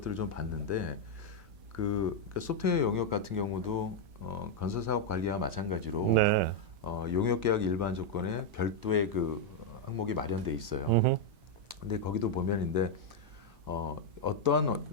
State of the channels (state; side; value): late; left; 2.9 ms